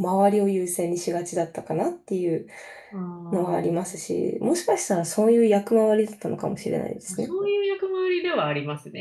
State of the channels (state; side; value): identical; both; correlation 1.00